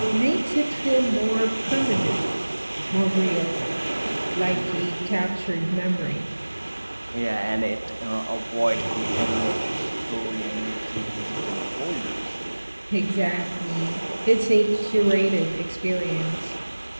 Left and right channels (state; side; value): inverted; both; correlation -1.00